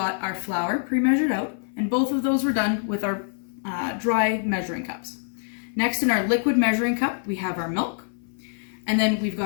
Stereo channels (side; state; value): right; silent; 56 dB below the other